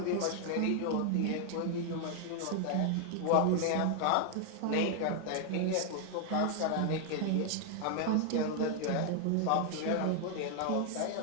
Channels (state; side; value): different; both; correlation 0.00